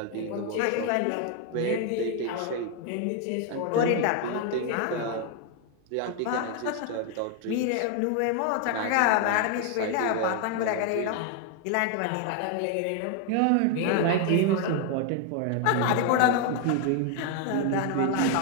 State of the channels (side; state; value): both; different; correlation 0.01